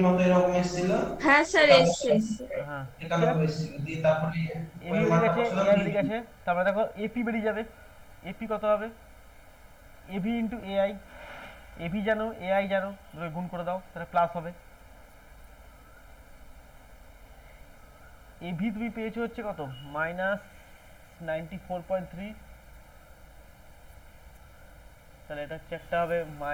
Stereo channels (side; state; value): both; identical; correlation 1.00